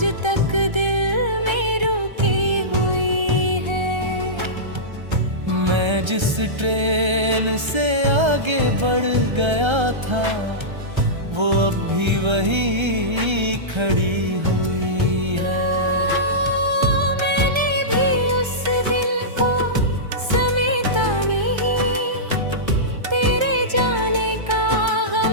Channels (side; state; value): left; late; 1.3 ms